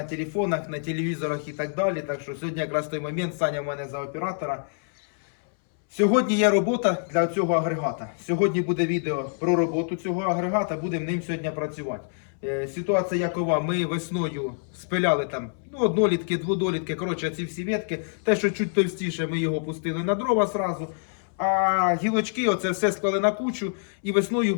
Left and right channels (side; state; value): right; silent; 61 dB below the other